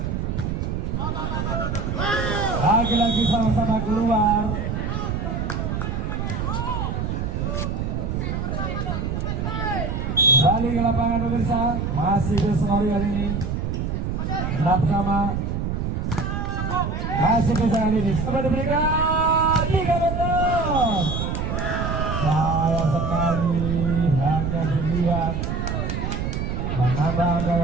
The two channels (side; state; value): right; noise; rumble, 2 dB below the sound